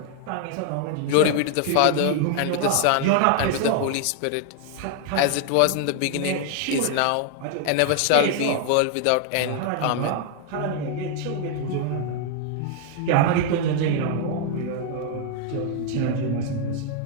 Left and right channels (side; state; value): both; different; correlation 0.00